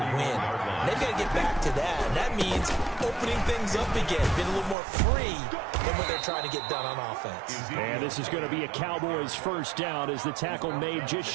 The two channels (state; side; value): drops out; left; at 4.8 s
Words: win. And they've got to get back to that, and that means opening things up again, being a little more free than what they're trying to get done on offense. And this is going to be a Cowboys first down as the tackle made just